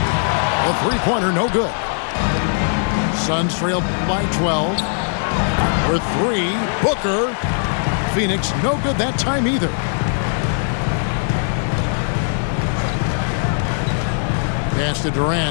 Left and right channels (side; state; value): right; silent; digital silence